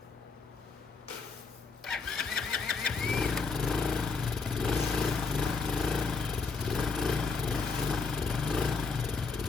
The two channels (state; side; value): quieter; right; 4.6 dB